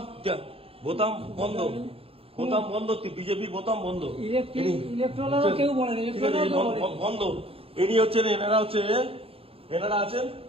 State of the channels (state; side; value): late; left; 0.27 ms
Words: বোতাম বন্ধ, বোতাম বন্ধ, বিজেপির বোতাম বন্ধ, কেউ বলে বন্ধ। ইনি হচ্ছেন, এনারা আছেন